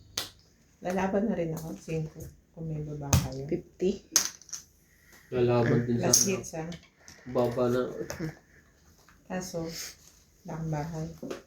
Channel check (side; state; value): both; identical; correlation 1.00